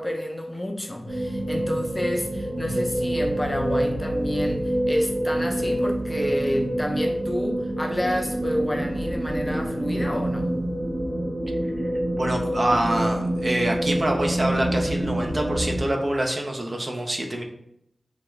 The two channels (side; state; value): both; normal; correlation 0.97